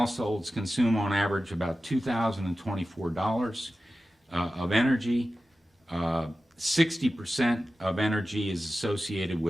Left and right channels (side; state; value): both; normal; correlation 0.94